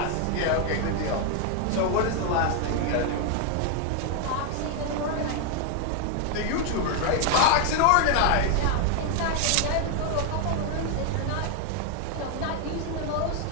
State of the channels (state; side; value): different; both; correlation 0.01